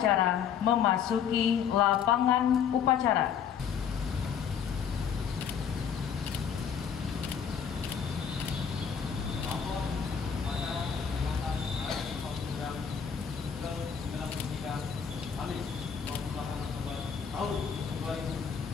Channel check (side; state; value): right; quieter; 7.6 dB